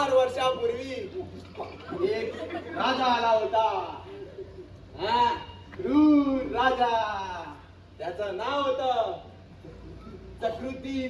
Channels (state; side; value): identical; both; correlation 1.00